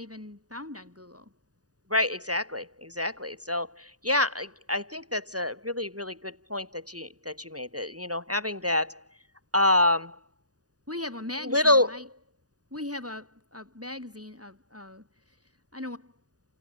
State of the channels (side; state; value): left; late; 0.68 ms